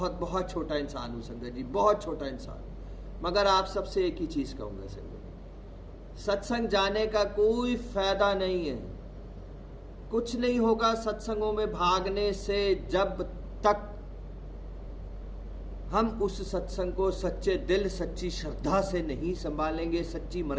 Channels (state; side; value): identical; both; correlation 1.00